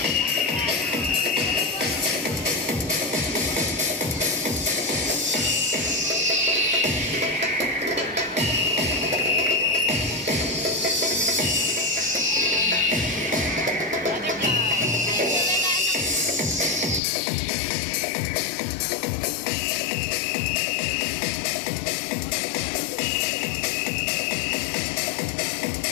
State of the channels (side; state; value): right; drops out; at 17.0 s